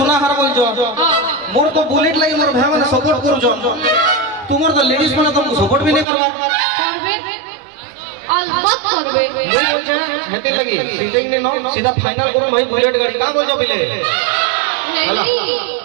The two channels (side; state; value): left; drops out; at 6.1 s